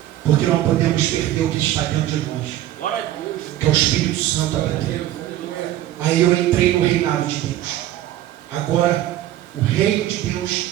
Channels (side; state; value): left; quieter; 13.5 dB